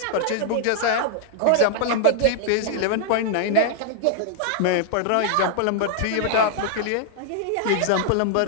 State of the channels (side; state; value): both; different; correlation -0.01